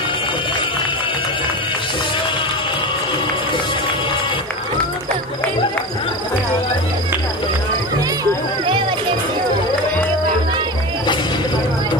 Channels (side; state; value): both; normal; correlation 0.25